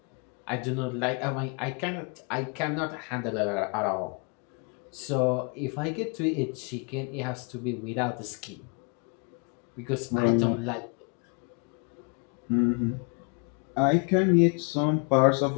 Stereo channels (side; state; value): right; quieter; 36.8 dB